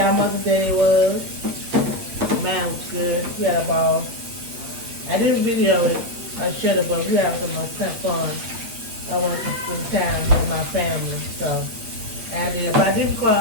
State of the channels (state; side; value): late; left; 8.6 ms